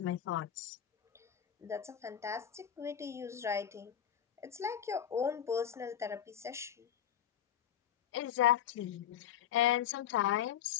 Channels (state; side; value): quieter; right; 9.8 dB